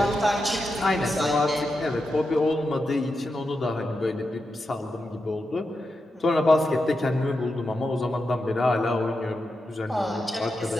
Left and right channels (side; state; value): both; normal; correlation 0.88